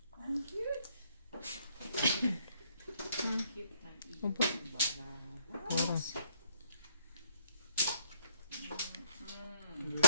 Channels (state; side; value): inverted; both; correlation -0.69